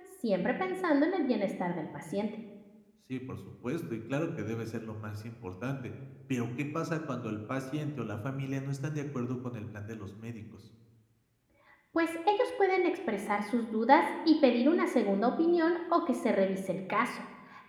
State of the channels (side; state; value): both; identical; correlation 1.00